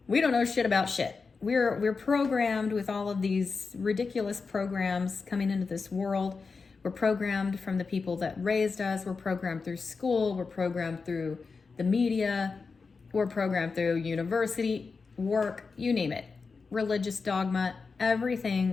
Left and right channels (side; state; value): right; quieter; 4.7 dB